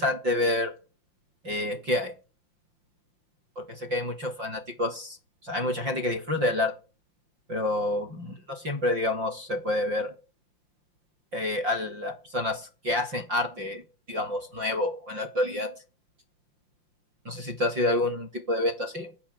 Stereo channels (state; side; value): late; left; 5.7 ms